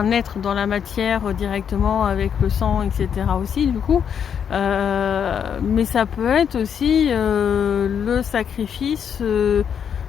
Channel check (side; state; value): right; quieter; 7.9 dB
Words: être dans la matière directement avec le sang, etc. aussi du coup, mais ça peut être aussi le sacrifice